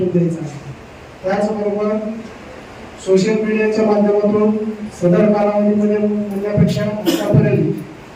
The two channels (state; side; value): identical; both; correlation 1.00